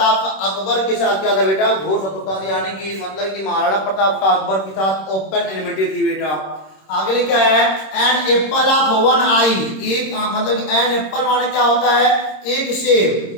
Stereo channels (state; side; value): late; right; 26 ms